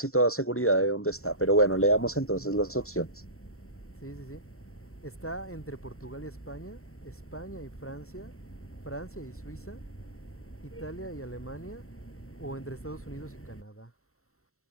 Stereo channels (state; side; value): late; right; 0.63 ms